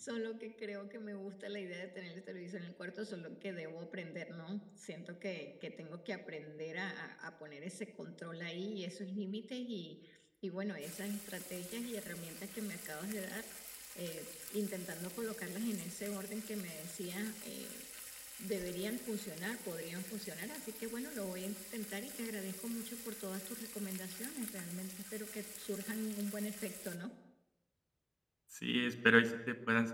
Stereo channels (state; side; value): identical; both; correlation 1.00